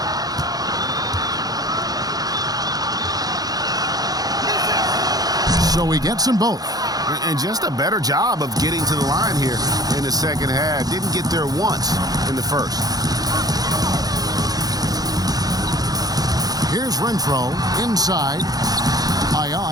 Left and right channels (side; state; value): left; late; 0.18 ms